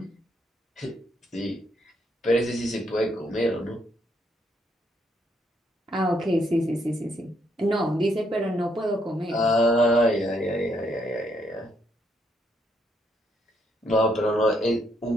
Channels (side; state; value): both; normal; correlation 0.74